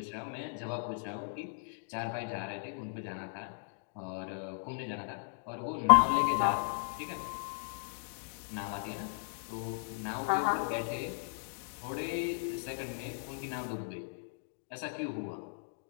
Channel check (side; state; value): right; silent; digital silence